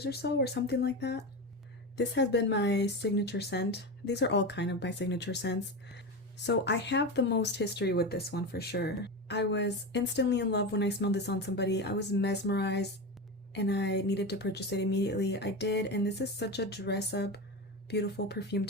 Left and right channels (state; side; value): normal; both; correlation 0.21